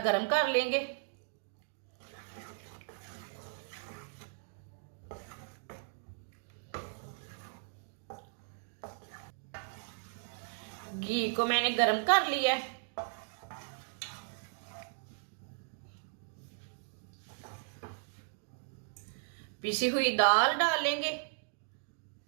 गर्म कर लेंगे। घी को मैंने गर्म कर लिया है। पिसी हुई दाल डालेंगे।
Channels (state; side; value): silent; left; digital silence